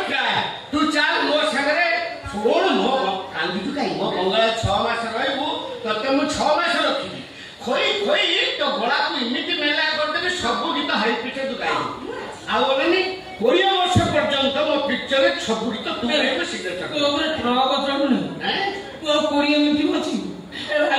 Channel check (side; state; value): both; identical; correlation 1.00